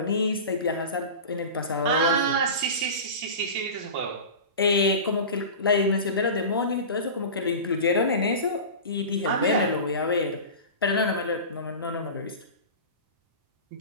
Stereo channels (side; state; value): both; inverted; correlation -0.31